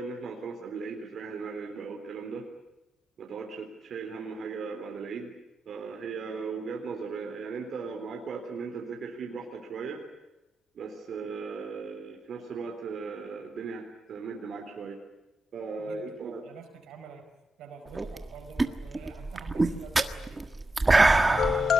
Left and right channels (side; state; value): both; normal; correlation 0.88